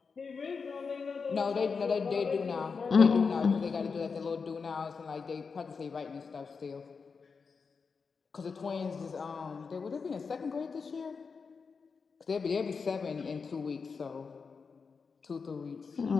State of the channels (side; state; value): right; quieter; 5.2 dB